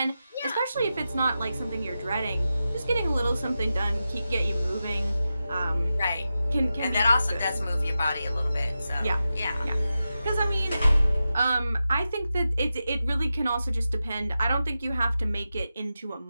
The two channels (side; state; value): both; inverted; correlation -0.91